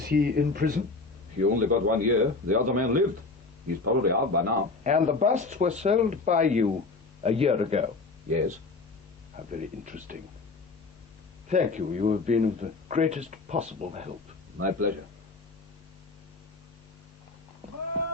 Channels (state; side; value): quieter; right; 3.7 dB